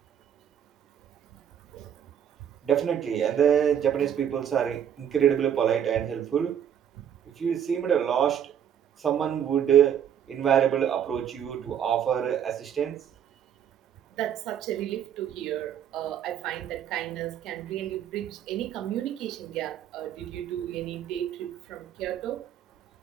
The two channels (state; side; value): quieter; left; 9.2 dB